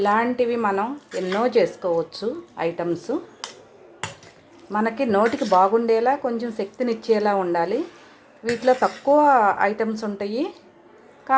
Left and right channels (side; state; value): both; identical; correlation 1.00